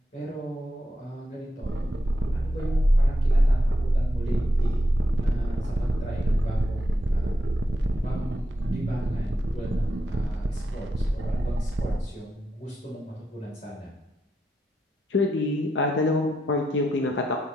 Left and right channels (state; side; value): normal; both; correlation 0.85